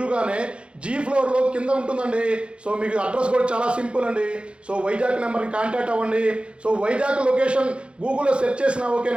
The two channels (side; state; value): left; late; 0.058 ms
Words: జీ ఫ్లోర్లో కింద ఉంటుందండి. సో మీకు అడ్రస్ కూడా చాలా సింపుల్ అండి. సో వైజాగ్ నెంబర్ని కాంటాక్ట్ అవ్వండి. సో వైజాగ్ లొకేషన్ గూగుల్లో సెర్చ్ చేసినా